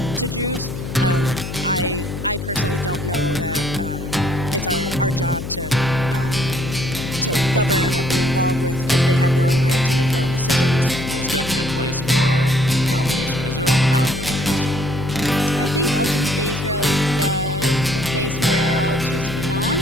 to Jews. I personally don't know that it's our job to govern or be involved with, because they have their own right to make their own decisions. There's definitely a place for an obligation to Israel without living in Israel. I think ultimately Israel is the place where all Jews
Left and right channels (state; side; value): noise; left; hum, 7 dB below the sound